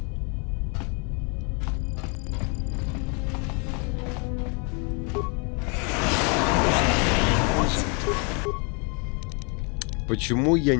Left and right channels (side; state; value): right; quieter; 34.7 dB